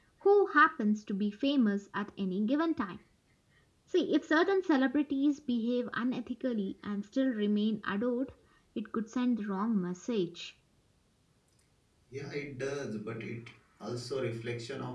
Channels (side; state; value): both; identical; correlation 1.00